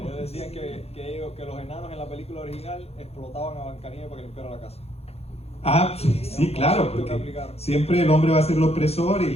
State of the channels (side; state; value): right; late; 0.29 ms